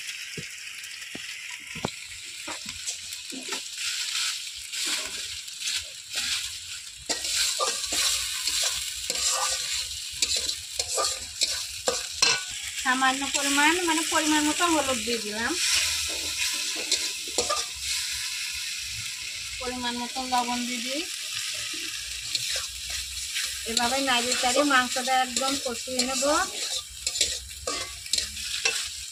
সামান্য পরিমাণ মানে পরিমাণ মতো হলুদ দিয়ে দিলাম, পরিমাণ মতো লবণ দিয়ে দিই। এভাবে নাড়িয়ে চাড়িয়ে মাংসটা একদম কষিয়ে নেব।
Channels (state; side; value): identical; both; correlation 1.00